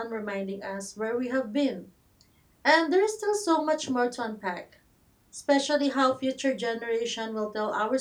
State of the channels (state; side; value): identical; both; correlation 1.00